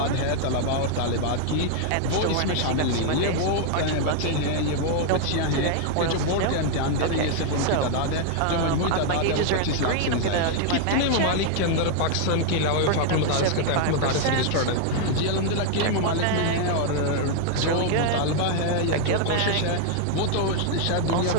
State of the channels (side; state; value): both; different; correlation 0.00